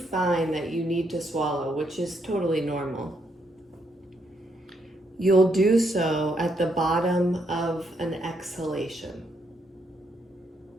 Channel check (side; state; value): both; normal; correlation 0.75